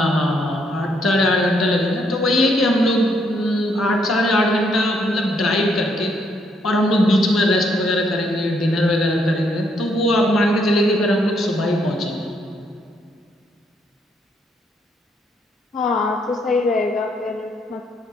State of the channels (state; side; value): normal; both; correlation 0.73